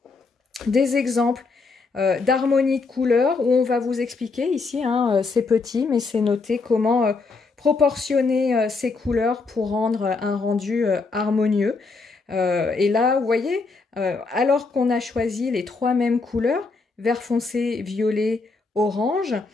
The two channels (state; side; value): quieter; right; 4.1 dB